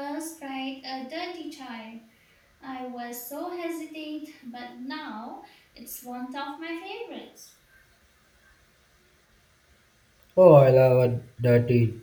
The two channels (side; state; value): both; identical; correlation 1.00